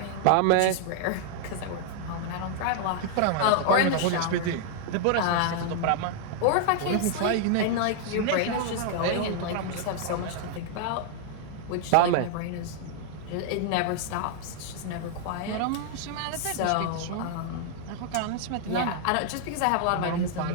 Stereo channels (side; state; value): both; different; correlation 0.00